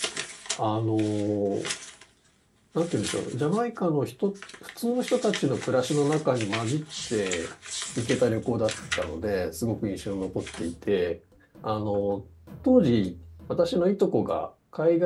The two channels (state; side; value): identical; both; correlation 1.00